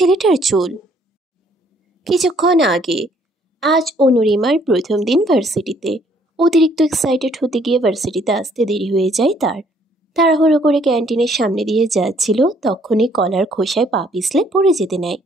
চুল। কিছুক্ষণ আগে আজ অনুরিমার প্রথম দিন ভার্সিটিতে। অতিরিক্ত এক্সাইটেড হতে গিয়ে ভার্সিটিতে আসতে দেরি হয়ে যায় তার। তাড়াহুড়ো করে ক্যান্টিনের সামনে দিয়ে যাচ্ছিল, তখনই কলার খোসায় পা পিছলে পড়ে যেতে নেয়।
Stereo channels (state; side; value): normal; both; correlation 0.64